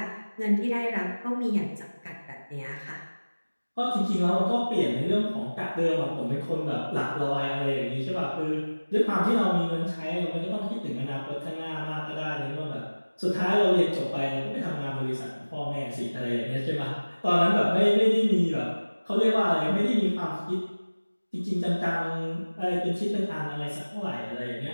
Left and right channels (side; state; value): both; inverted; correlation -1.00